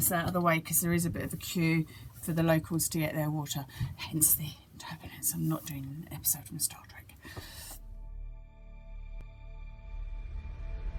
out of the way because there is a bit of a queue for the locals to get their water, hence the turbulence. I'm not doing an episode from Star Trek.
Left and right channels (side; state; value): both; identical; correlation 1.00